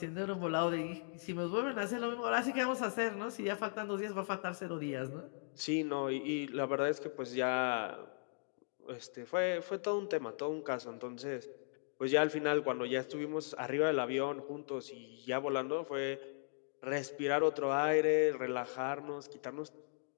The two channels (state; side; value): silent; right; digital silence